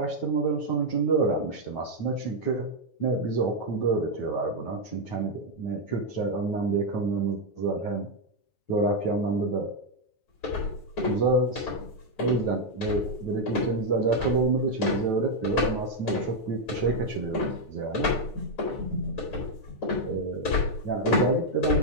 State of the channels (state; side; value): late; right; 9.3 ms